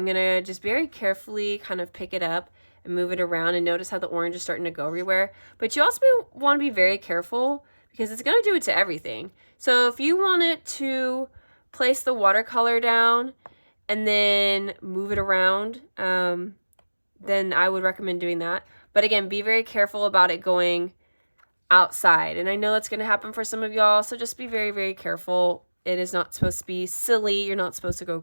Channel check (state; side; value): inverted; both; correlation -1.00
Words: going to just very carefully kind of pick it up and move it around, and notice how the orange is starting to go everywhere. But you also want to be very careful because it's going to do it to everything. So if you want it to place the watercolor down and then move it around, then I would recommend doing that. But again, be very careful about it going outside. And I know that's going to happen for some of y'all, so just be very, very careful. It is not supposed to be silly. You're not supposed to go